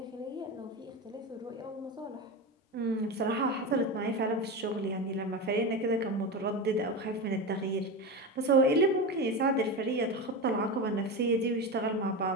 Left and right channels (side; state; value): both; normal; correlation 0.21